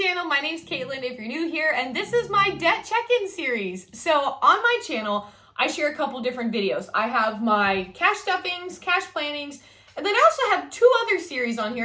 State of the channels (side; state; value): both; identical; correlation 1.00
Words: My name's Caitlin if you're new here, and this is my debt check-in series. So on my channel, I share a couple different videos. I have my cash stuffings, cash plannings, and then I also have two other series on